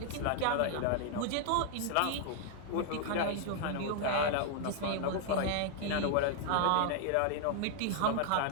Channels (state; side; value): different; both; correlation 0.00